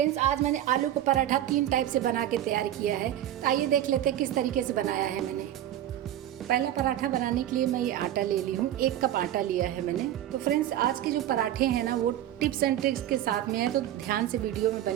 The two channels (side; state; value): left; quieter; 12.1 dB